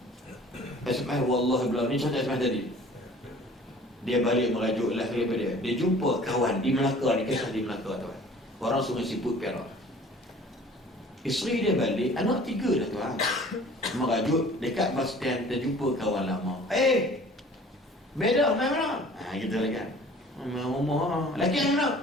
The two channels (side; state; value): both; normal; correlation 0.49